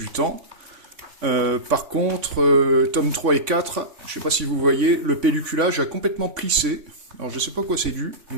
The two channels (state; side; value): late; left; 3.5 ms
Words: temps. Par contre, tome 3 et 4, je ne sais pas si vous voyez, le pelliculage a complètement plissé. Alors je ne sais pas quoi c'est dû,